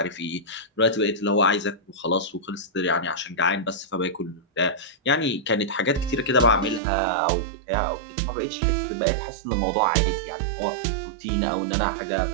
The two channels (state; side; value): drops out; left; at 6.8 s